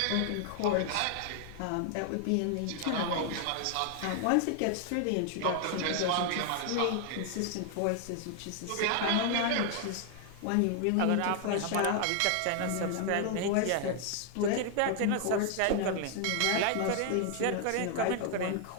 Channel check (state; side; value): different; both; correlation 0.00